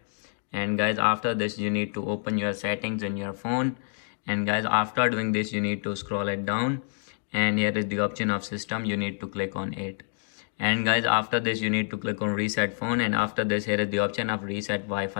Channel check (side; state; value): right; silent; 56 dB below the other